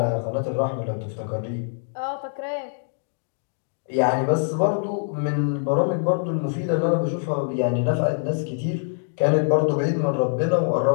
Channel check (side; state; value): right; silent; digital silence